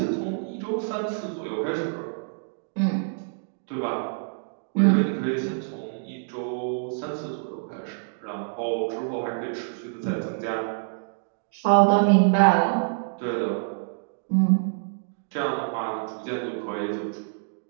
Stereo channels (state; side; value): silent; left; digital silence